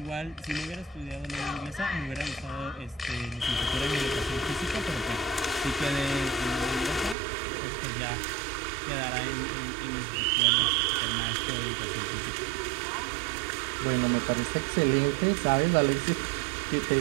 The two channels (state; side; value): drops out; left; at 7.2 s